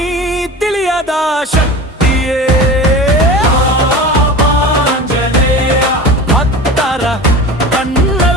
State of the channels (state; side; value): normal; both; correlation 0.34